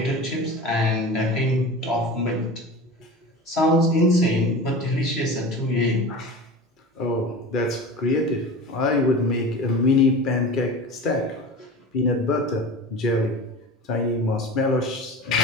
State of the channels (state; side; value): normal; both; correlation 0.33